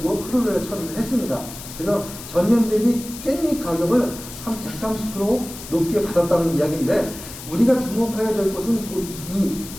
크루렐라 처리를 했습니다. 그래서 전년 대비 깻잎 가격을 한 130% 높게 받았다는 이야기인데 우리가 주목해야 될 것은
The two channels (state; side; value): noise; left; hiss, 13 dB below the sound